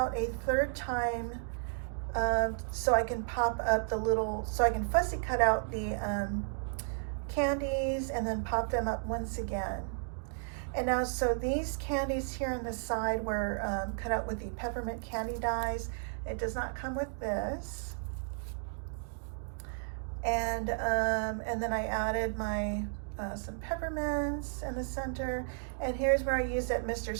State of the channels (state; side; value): silent; left; digital silence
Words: a third time so I can pop up the little, so I can fussy cut out the candies and then pop them up once again. And now, so these candies here on the side were cut out with the peppermint candy dies. It does not come with this. And then I added my some peppermints in the center. And here's where I used that Mr.